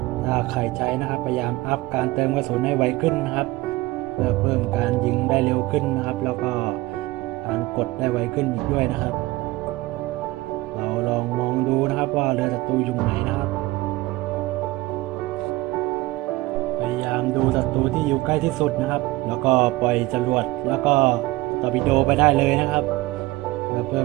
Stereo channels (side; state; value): left; quieter; 19.8 dB